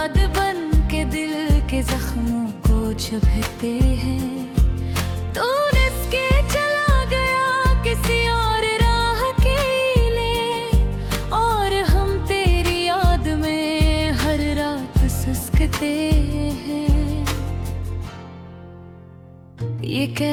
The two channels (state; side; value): identical; both; correlation 1.00